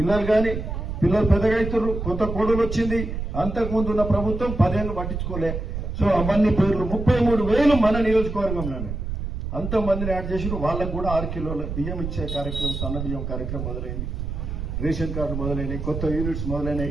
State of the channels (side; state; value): right; noise; rumble, 5 dB below the sound